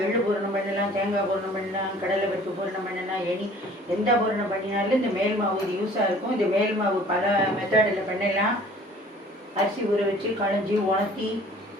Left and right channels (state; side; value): normal; both; correlation 0.51